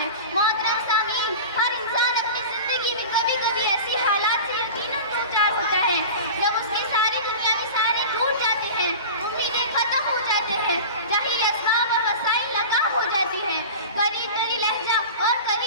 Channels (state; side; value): inverted; both; correlation -0.33